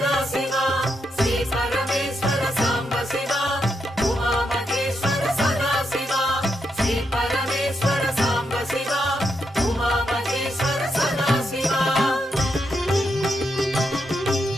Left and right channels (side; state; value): both; normal; correlation 0.82